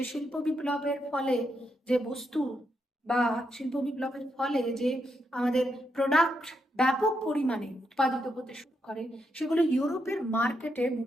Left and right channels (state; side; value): normal; both; correlation 0.81